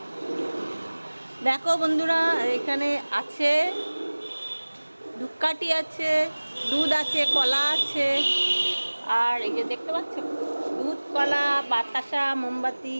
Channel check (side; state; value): both; inverted; correlation -1.00